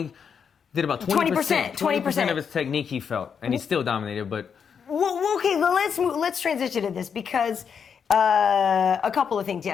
did about 20% of his technique, he felt, and he still dominated, but. Well, okay, let's transition to this, because a couple of things.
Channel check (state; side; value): quieter; right; 6.9 dB